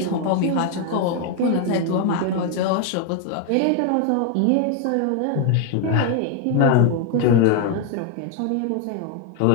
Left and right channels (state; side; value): different; both; correlation 0.01